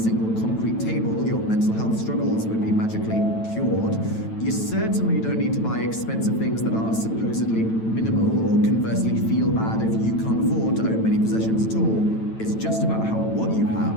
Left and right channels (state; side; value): late; right; 9.1 ms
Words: concrete table, your mental health struggles would be magically cured. You certainly don't need to buy expensive things that are supposedly minimal, or conversely feel bad if you can't afford to own many possessions at all. It's just about how what you